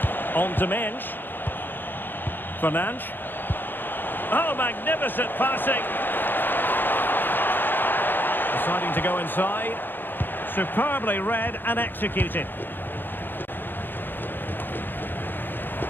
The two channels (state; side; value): late; right; 0.095 ms